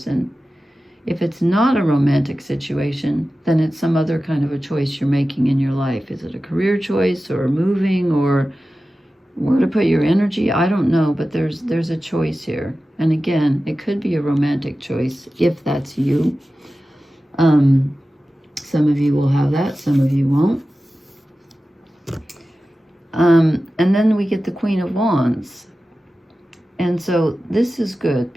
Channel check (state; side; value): normal; both; correlation 0.94